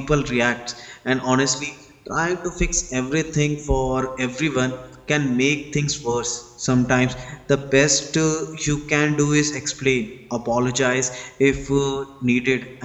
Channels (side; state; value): both; identical; correlation 1.00